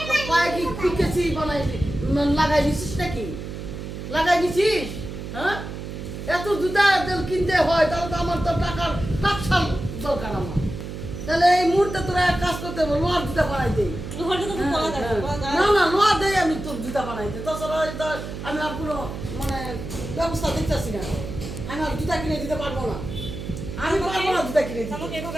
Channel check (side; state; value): right; noise; hum, 8 dB below the sound